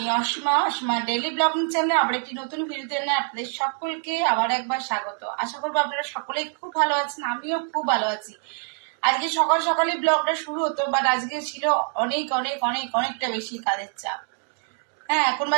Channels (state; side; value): silent; left; 57 dB below the other